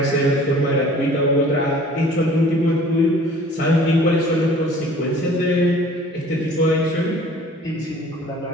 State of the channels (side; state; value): both; normal; correlation 0.50